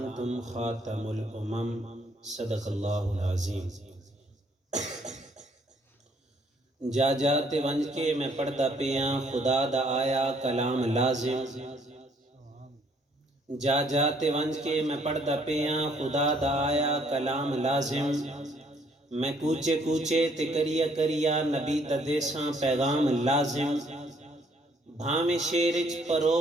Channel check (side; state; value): both; normal; correlation 0.65